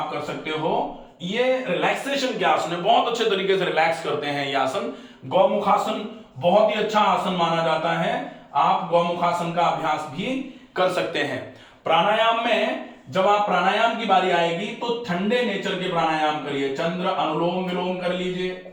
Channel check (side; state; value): both; identical; correlation 1.00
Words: कर सकते हो। ये रिलैक्सेशन के आसन है, बहुत अच्छे तरीके से रिलैक्स करते हैं ये आसन। गौमुखासन बहुत ही अच्छा आसन माना जाता है, आप गौमुखासन का अभ्यास भी कर सकते हैं। प्राणायाम में जब आप प्राणायाम की बारी आएगी तो ठंडे नेचर के प्राणायाम करिए। चंद्र अनुलोम विलोम कर